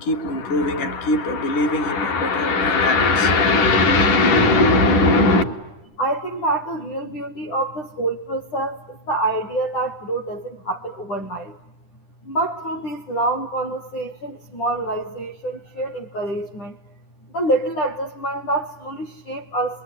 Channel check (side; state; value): right; late; 10 ms